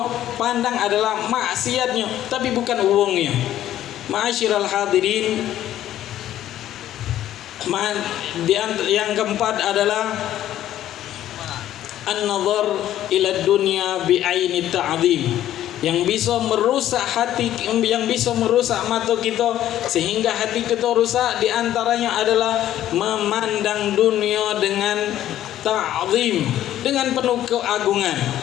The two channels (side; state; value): right; quieter; 12.4 dB